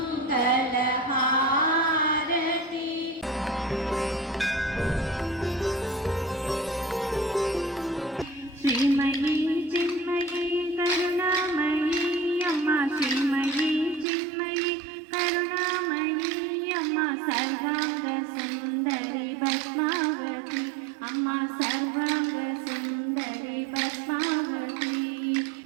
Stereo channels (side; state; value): left; drops out; at 14.1 s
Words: श्रीमयी चिन्मयी करुणामयी अम्मा श्रीमयी चिन्मयी करुणामयी अम्मा सर्वांग सुंदरी पद्मावती अम्मा सर्वांग सुंदरी पद्मावती